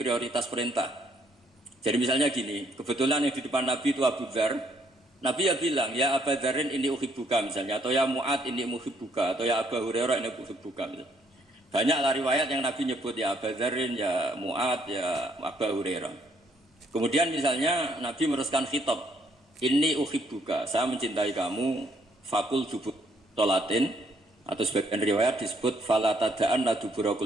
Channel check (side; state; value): both; normal; correlation 0.69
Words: perintah. Jadi misalnya gini, kebetulan yang di depan Nabi itu Abu Dzar. Nabi ya bilang, ya Abu Dzarin ini uhibbuka misalnya, atau ya Mu'ad ini uhibbuka, atau ya Abu Hurairah ini uhibbuka misalnya. Banyaklah riwayat yang Nabi nyebut ya Abu Dzarin, ya Mu'ad, ya Abu Hurairah. Kemudian misalnya Nabi meneruskan khitab, ini uhibbuka, saya mencintai kamu, fakul dubur sholatin, atau sebagian riwayat disebut fala tada'an la dubura